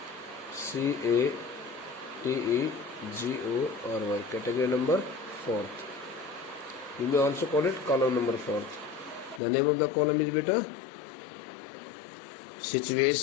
CATEGORY. Category number 4th. You may also call it column number 4th. The name of the column is beta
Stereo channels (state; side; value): drops out; right; at 9.4 s